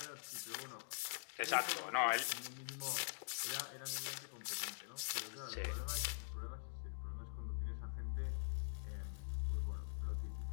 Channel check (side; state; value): right; silent; digital silence